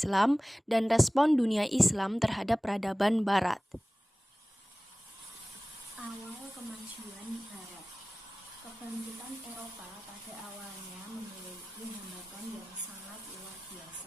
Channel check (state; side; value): normal; both; correlation 0.98